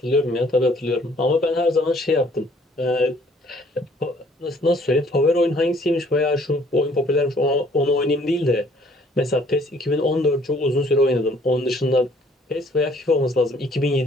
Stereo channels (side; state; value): both; normal; correlation 0.60